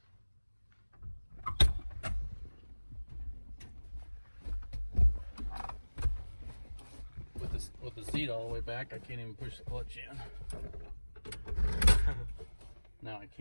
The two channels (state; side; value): inverted; both; correlation -1.00